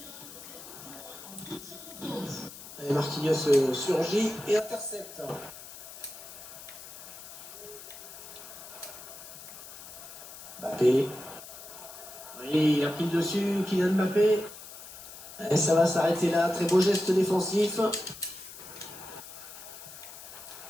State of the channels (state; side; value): noise; left; hiss, 14 dB below the sound